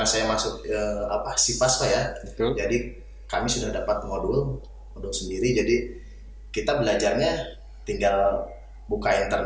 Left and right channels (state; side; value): identical; both; correlation 1.00